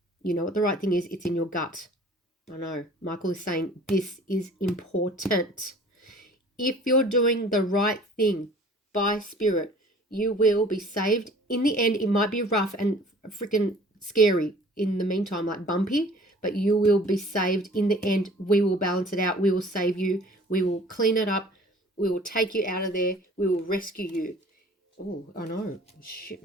You know what the right thing is? It's in your gut. I know. Michael is saying this is important. If you're doing the right thing by spirit, you will be saved. In the end, it might be rough and freaking scary in the meantime, like bumpy, but you will be saved. In the end, we will balance it out. We will save you. We will clean it up. We will take you out of there. We will rescue you. Oh, I know. Shit,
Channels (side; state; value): both; normal; correlation 0.50